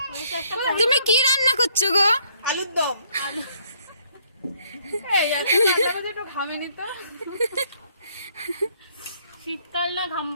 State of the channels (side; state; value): both; inverted; correlation -0.66